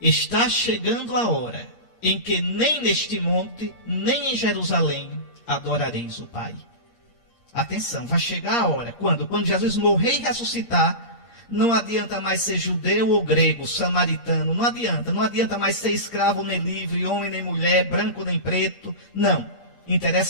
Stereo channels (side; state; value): right; late; 8.5 ms